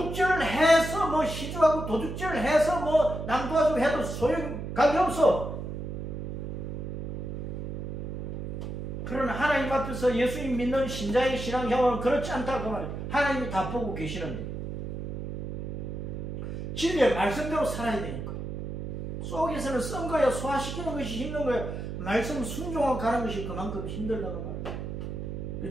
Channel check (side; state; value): right; noise; hum, 6 dB below the sound